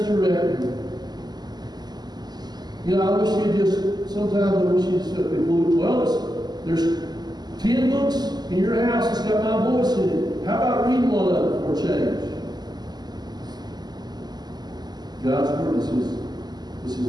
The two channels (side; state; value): left; late; 0.20 ms